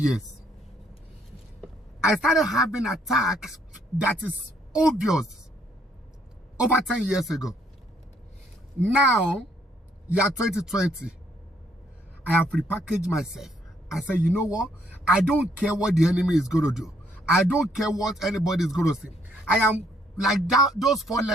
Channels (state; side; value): normal; both; correlation 0.68